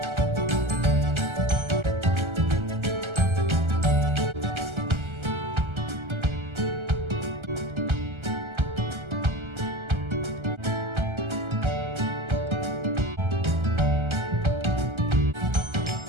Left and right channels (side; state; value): left; late; 1.3 ms